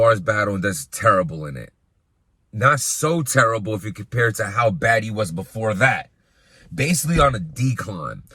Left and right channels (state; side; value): identical; both; correlation 1.00